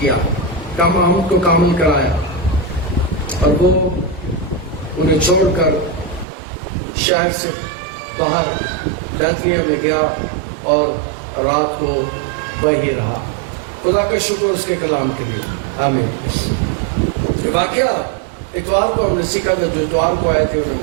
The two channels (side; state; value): left; drops out; at 6.2 s